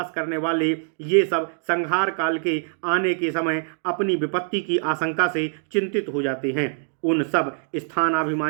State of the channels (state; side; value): silent; left; 63 dB below the other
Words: करने वाले, ये सब संहार काल के आने के समय अपनी विपत्ति की आशंका से चिंतित हो जाते हैं। उन सब